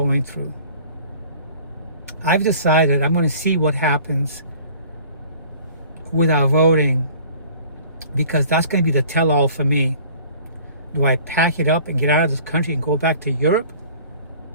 through. I've decided I'm going to see what happens with our voting, because that's going to be the tell-all for me. Do I pack it up and get out of this country and go back to Europe?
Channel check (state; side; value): inverted; both; correlation -0.49